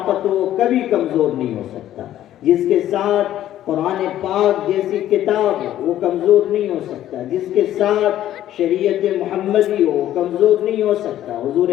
ہو وہ کبھی کمزور نہیں ہو سکتا، جس کے ساتھ قرآن پاک جیسی کتاب ہو وہ کمزور نہیں ہو سکتا، جس کے ساتھ شریعت محمدی ہو وہ کمزور نہیں ہو سکتا۔ حضور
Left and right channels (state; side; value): quieter; right; 12.5 dB